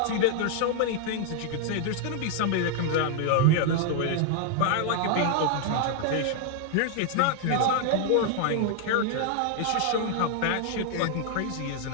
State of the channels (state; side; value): different; both; correlation 0.00